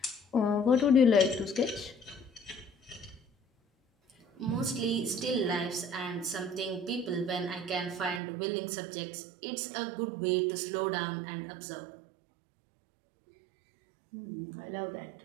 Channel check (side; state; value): left; drops out; at 8.2 s